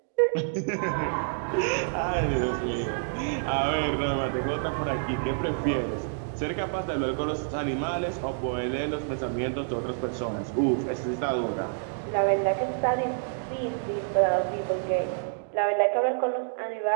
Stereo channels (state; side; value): silent; left; digital silence